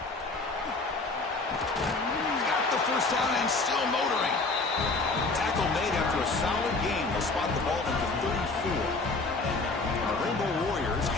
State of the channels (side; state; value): right; quieter; 3.6 dB